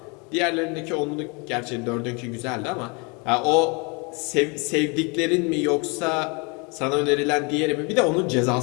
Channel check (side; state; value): right; quieter; 31.1 dB